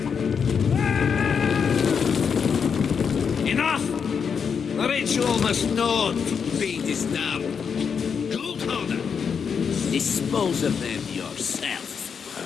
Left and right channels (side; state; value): right; quieter; 6.5 dB